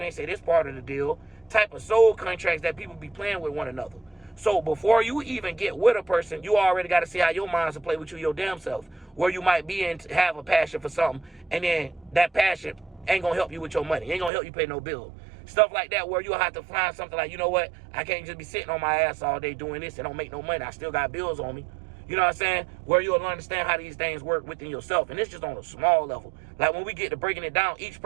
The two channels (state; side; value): drops out; left; at 14.3 s